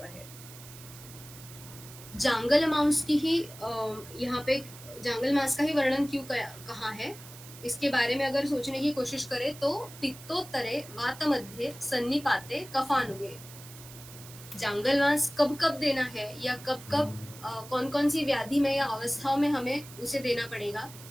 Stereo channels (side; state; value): right; noise; hiss, 17 dB below the sound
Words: है। जांगल मांस की ही यहाँ पे जांगल मांस का ही वर्णन क्यों कहा है, इसके बारे में अगर सोचने की कोशिश करें तो पित्तोत्तरे वात मध्य सन्निपाते कफानुगे। जांगल मांस कब कब देना है या कब कब कौन कौन सी व्याधि में या अवस्थाओं में हमें उसे देना पड़ेगा,